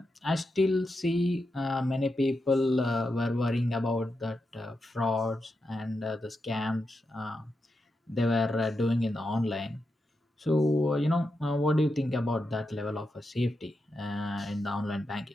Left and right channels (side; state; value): both; normal; correlation 0.87